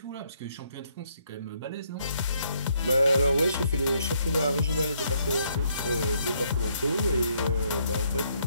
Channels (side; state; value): both; inverted; correlation -0.71